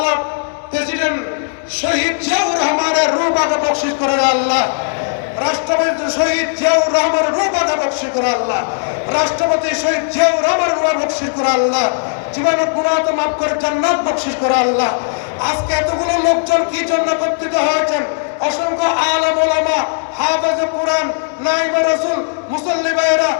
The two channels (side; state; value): right; silent; digital silence